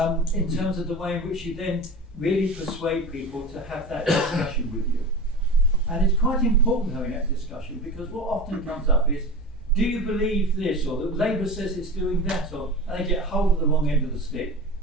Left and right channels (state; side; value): normal; both; correlation 0.30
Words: in terms of the way in which you then really persuade people to have that discussion with you. And it's quite important having that discussion, because what often comes up is, do you believe this, or that Labour says it's doing that, or and they get hold of the wrong end of the stick,